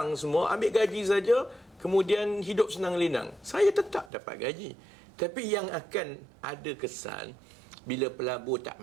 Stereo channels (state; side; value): drops out; left; at 4.1 s